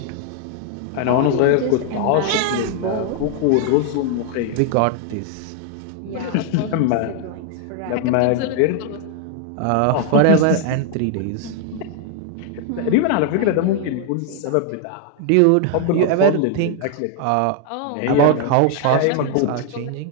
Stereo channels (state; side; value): different; both; correlation 0.00